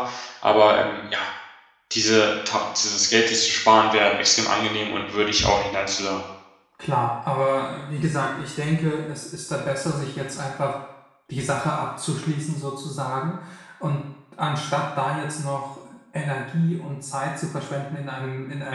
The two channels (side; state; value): both; identical; correlation 1.00